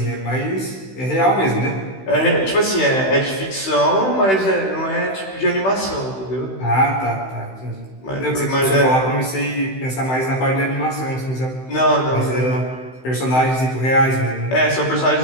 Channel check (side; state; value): right; late; 16 ms